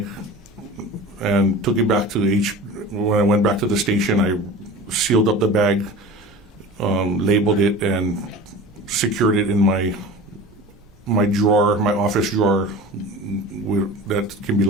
and took it back to when I went back to the station, I sealed up the bag, labeled it, and secured it in my drawer, my office drawer, that can be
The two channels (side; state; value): both; normal; correlation 0.36